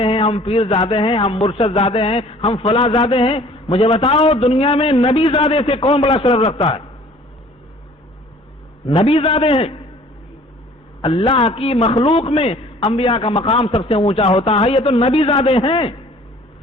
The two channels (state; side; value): normal; both; correlation 0.52